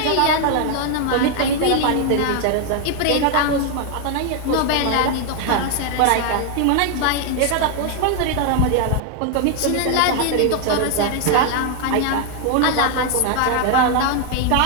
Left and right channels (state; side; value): different; both; correlation 0.00